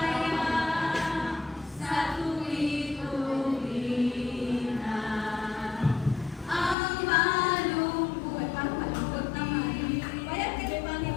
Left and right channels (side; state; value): right; drops out; at 6.8 s